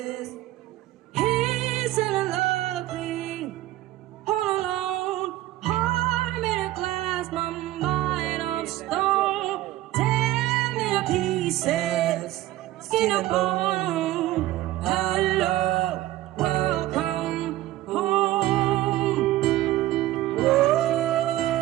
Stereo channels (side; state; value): left; quieter; 15.6 dB